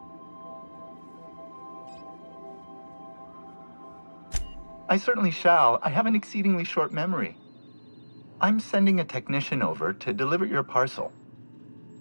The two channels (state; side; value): inverted; both; correlation -1.00